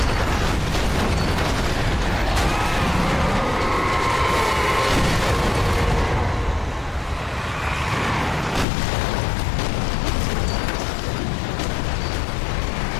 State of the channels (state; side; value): drops out; right; at 8.7 s